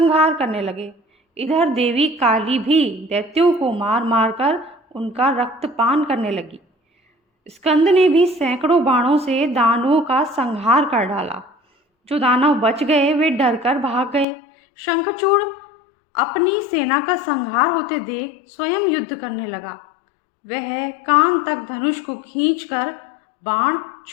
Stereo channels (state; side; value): drops out; right; at 14.2 s